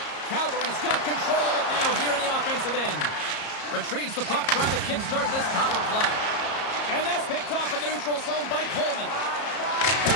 Calgary's got control of it now here in the offensive end. Retrieves the puck, trying to kickstart this power play. And that's picked off in the neutral zone by Coleman.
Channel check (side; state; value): right; late; 34 ms